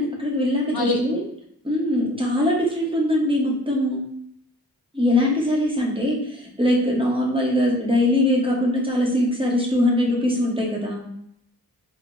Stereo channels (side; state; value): both; normal; correlation 0.53